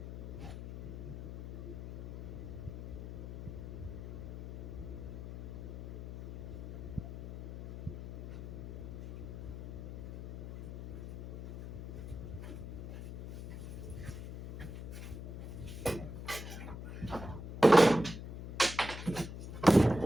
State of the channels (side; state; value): left; noise; hum, 9 dB below the sound